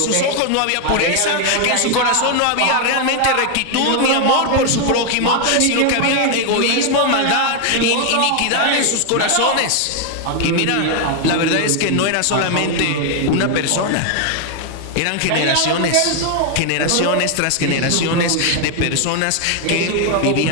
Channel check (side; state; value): both; different; correlation 0.00